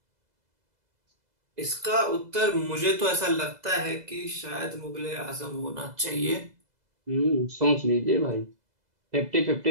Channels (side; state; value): left; late; 2.0 ms